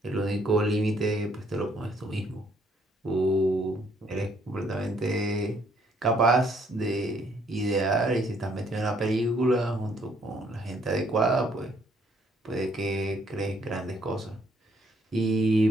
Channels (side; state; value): both; normal; correlation 0.67